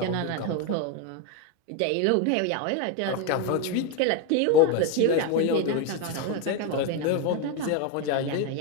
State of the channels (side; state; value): both; different; correlation 0.02